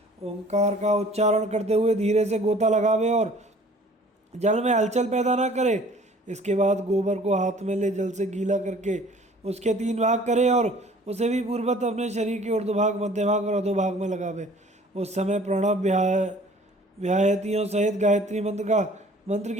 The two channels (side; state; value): both; normal; correlation 0.52